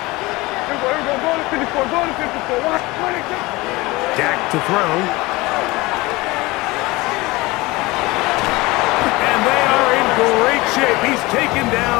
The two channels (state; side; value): quieter; right; 21.8 dB